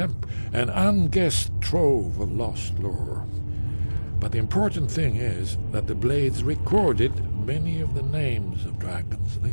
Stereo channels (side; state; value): both; inverted; correlation -1.00